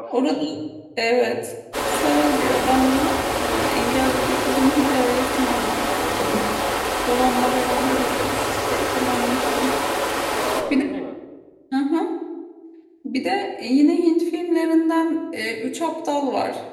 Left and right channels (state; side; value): identical; both; correlation 1.00